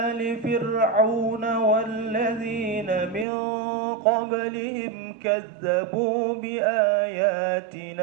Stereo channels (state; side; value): drops out; left; at 3.2 s